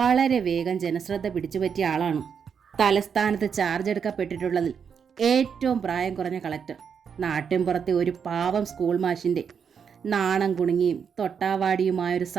വേഗം ജനശ്രദ്ധ പിടിച്ചുപറ്റിയ ആളാണ്. തലസ്ഥാനത്ത് ചാർജ് എടുക്കപ്പെട്ടിട്ടുള്ളതിൽ ഏറ്റവും പ്രായം കുറഞ്ഞ കളക്ടർ. നാട്ടിൻപുറത്തെ ഒരു പാവം സ്കൂൾ മാഷിൻ്റെ നാണം കുണുങ്ങിയും തൊട്ടാവാടിയുമായൊരു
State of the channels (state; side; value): quieter; left; 6.9 dB